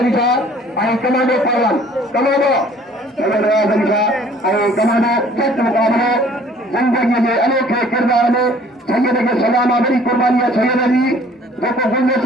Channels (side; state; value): both; normal; correlation 0.54